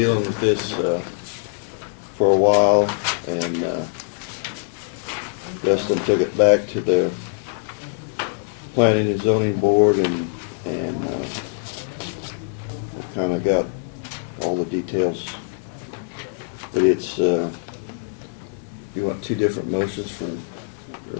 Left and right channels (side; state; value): right; silent; digital silence